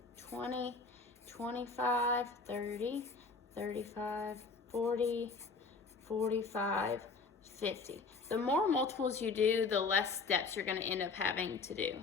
20, 25, 30, 35, 40, 45, 50. The more multiples you do, the less steps you're going to end up having to do.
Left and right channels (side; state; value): right; quieter; 4.3 dB